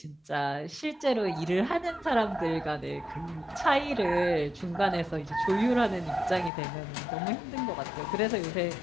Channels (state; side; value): drops out; right; at 6.5 s